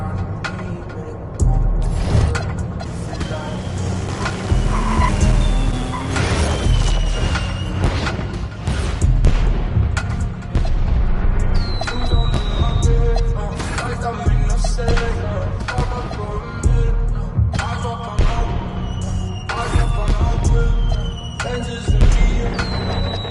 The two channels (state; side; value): identical; both; correlation 1.00